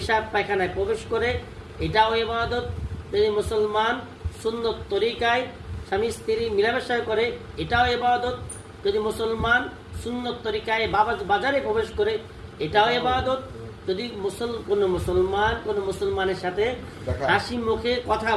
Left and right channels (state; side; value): identical; both; correlation 1.00